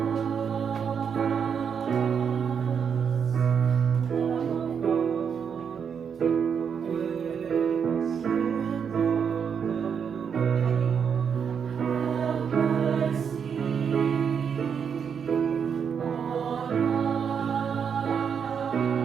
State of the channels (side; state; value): left; quieter; 7.1 dB